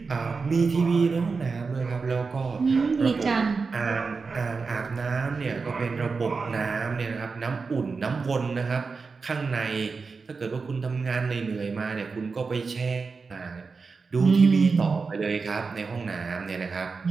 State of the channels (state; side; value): quieter; left; 4.6 dB